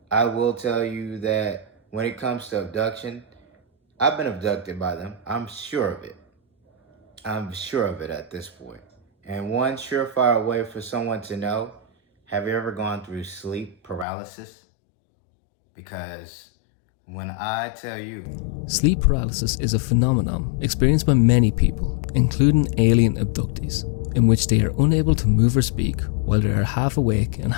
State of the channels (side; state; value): right; drops out; at 14.1 s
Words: I will tell you that when it comes to abduction, I've been abducted by them. I'm sure of it. I'm sure of it at this point. And one surefire way for someone to know, have you ever gone through sleep paralysis? Because when I tell you... Sleep paralysis is a phenomenon experienced by many people, including alien abductees, in which they are unable to move or speak while they are half awake and